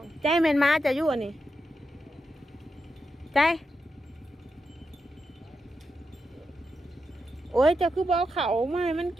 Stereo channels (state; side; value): normal; both; correlation 0.87